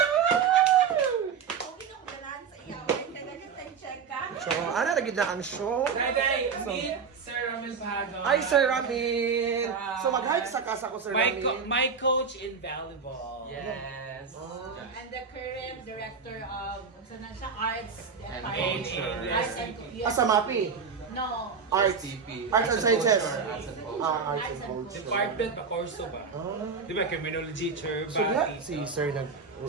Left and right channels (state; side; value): quieter; left; 5.9 dB